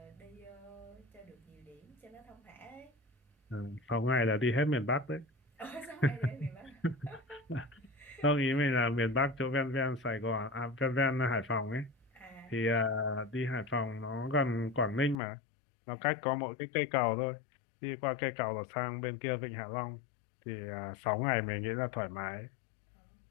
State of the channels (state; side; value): drops out; right; at 15.2 s